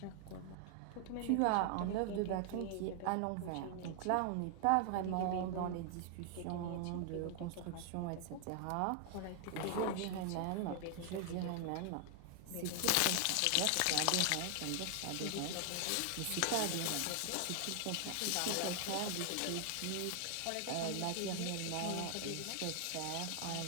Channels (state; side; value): different; both; correlation 0.00